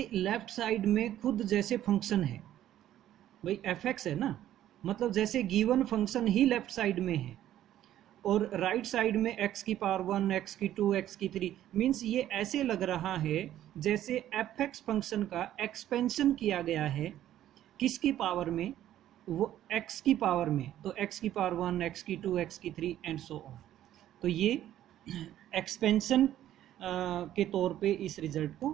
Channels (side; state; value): left; quieter; 12.3 dB